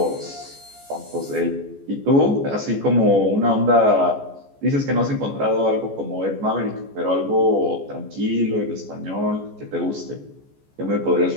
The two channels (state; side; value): late; left; 14 ms